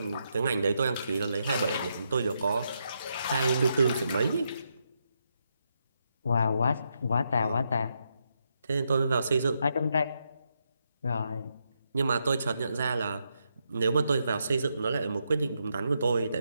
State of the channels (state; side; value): inverted; both; correlation -0.81